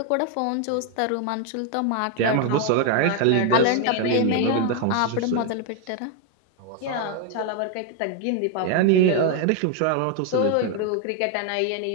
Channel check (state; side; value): different; both; correlation 0.01